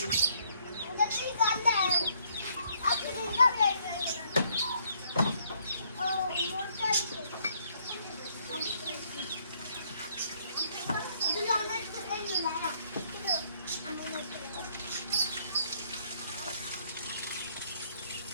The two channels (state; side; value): inverted; both; correlation -0.68